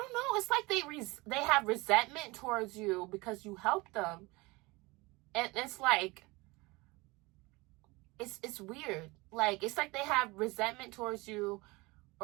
know, it's like they have resentment towards you because you help them. And it's like, it's weird. Like, it's like they have resentment towards you,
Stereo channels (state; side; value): quieter; left; 23.8 dB